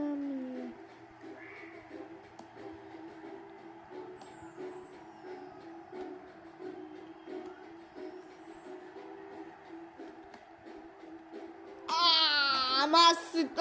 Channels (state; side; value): identical; both; correlation 1.00